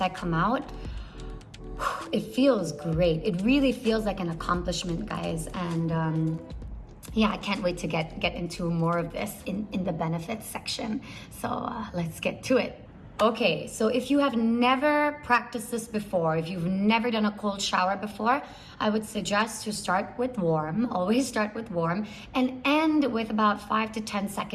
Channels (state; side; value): identical; both; correlation 1.00